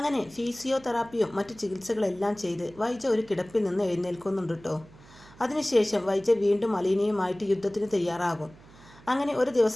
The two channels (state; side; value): noise; right; hum, 23 dB below the sound